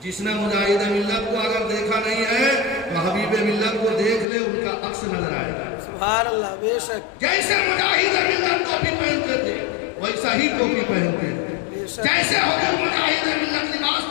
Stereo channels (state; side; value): drops out; right; at 4.2 s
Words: جس نے مجاہد ملت کو اگر دیکھا نہیں ہے تو حبیب ملت کو دیکھ لے ان کا عکس نظر آئے گا. سبحان اللہ بے شک جیسے مجاہد ملت ٹوپی پہنتے تھے ویسا ہی ٹوپی پہنتے ہیں. بے شک جیسے حضور مجاہد ملت